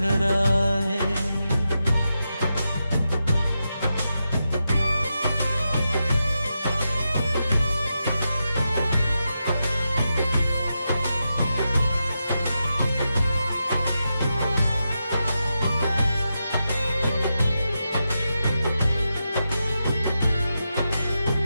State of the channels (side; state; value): both; inverted; correlation -0.88